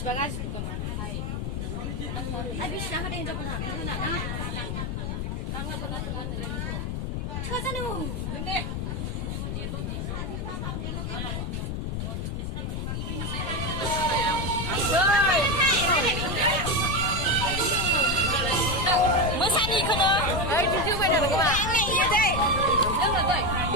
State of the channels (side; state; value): left; noise; rumble, 3 dB below the sound